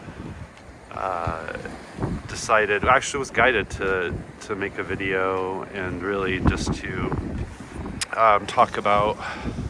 was guided to make a video and really just to talk about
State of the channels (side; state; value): both; identical; correlation 1.00